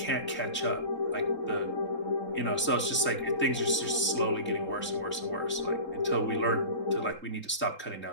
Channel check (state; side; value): late; right; 3.7 ms